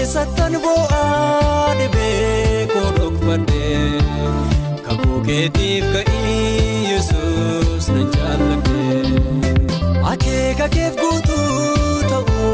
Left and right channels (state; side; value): identical; both; correlation 1.00